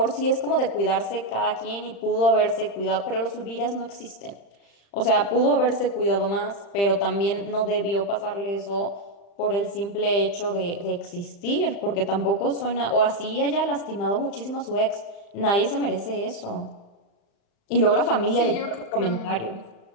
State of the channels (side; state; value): right; late; 35 ms